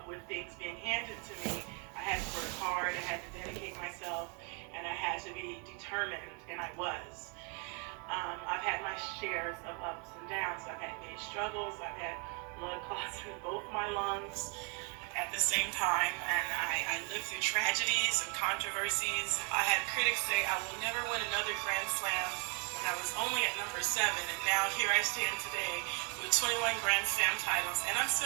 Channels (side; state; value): left; quieter; 35.9 dB